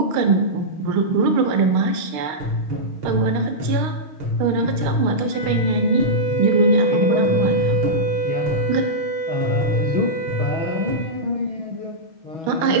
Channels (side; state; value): left; late; 6.5 ms